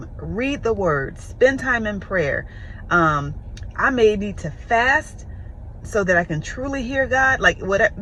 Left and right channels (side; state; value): both; identical; correlation 1.00